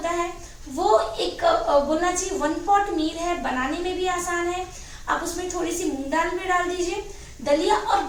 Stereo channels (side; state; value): both; identical; correlation 1.00